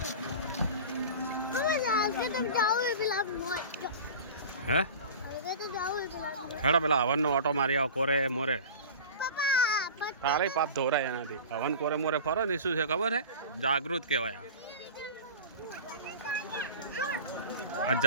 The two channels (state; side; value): inverted; both; correlation -0.35